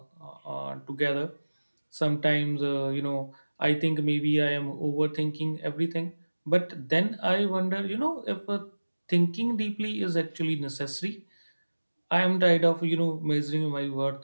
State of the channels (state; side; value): inverted; both; correlation -1.00